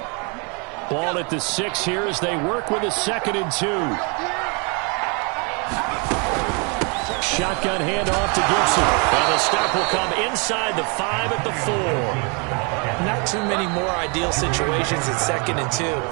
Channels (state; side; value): quieter; left; 33.8 dB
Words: Ball at the 6 here as they work with a 2nd and 2. Shotgun handoff to Gibson. And the stop will come inside the 5 at the 4. Not too many more ideal situations at 2nd and 2